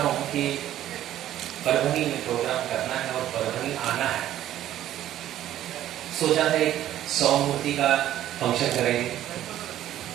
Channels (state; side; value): quieter; left; 12.5 dB